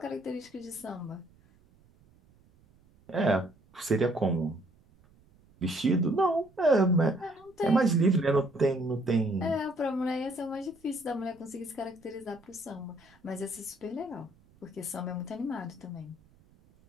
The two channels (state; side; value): noise; right; rumble, 30 dB below the sound